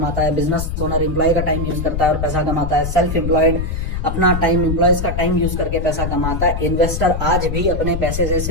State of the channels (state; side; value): noise; left; rumble, 3 dB below the sound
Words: है। बिजनेस ओनर एम्प्लॉय का टाइम यूज करता है और पैसा कमाता है। सेल्फ एम्प्लॉयड अपना टाइम, एम्प्लॉयज का टाइम यूज करके पैसा कमाता है। इन्वेस्टर आज भी अपने पैसे से